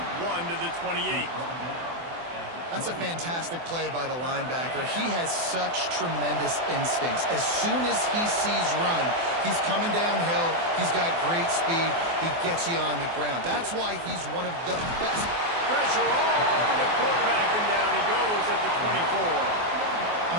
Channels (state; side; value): late; left; 24 ms